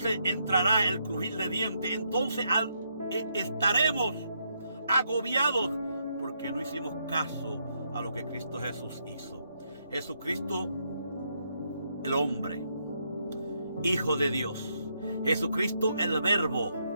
entrará el crujir de dientes, entonces estaremos agobiados porque no hicimos caso a lo que Cristo Jesús hizo. Jesucristo, el hombre, Hijo de Dios. Jesucristo, el Verbo,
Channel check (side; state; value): both; inverted; correlation -0.77